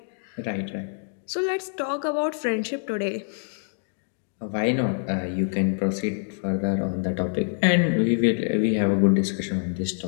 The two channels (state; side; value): silent; right; digital silence